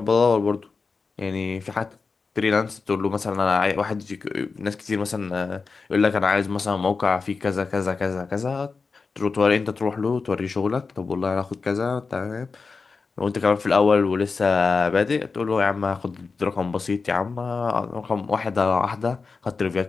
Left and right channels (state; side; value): quieter; right; 4.6 dB